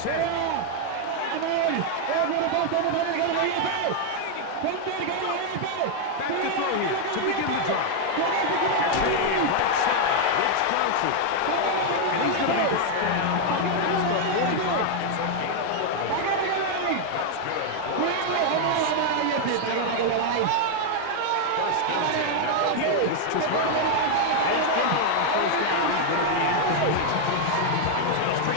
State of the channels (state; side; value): different; both; correlation 0.00